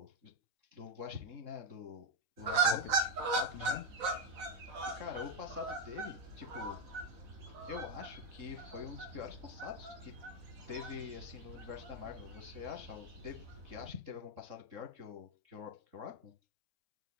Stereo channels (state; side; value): late; left; 4.0 ms